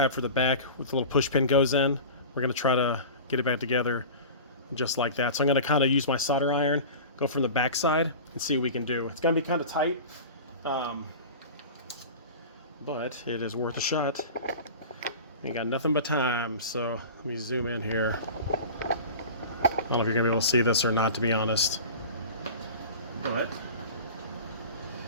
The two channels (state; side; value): inverted; both; correlation -0.35